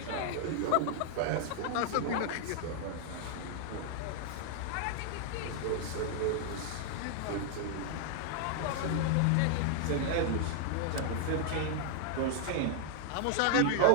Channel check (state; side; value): different; both; correlation -0.01